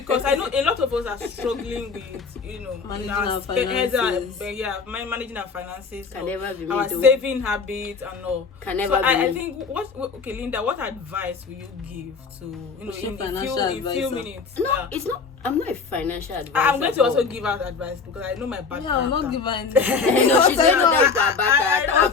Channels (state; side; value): quieter; right; 5.1 dB